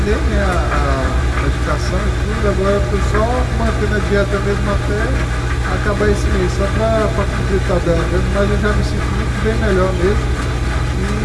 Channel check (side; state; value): both; identical; correlation 1.00